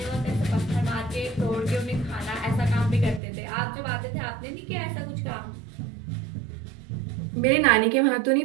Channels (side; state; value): left; drops out; at 3.2 s